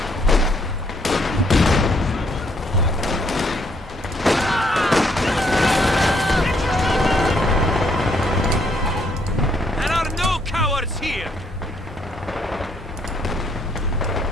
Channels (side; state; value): both; normal; correlation 0.70